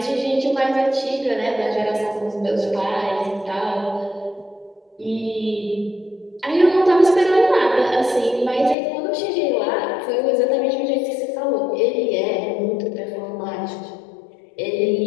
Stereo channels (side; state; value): right; drops out; at 8.8 s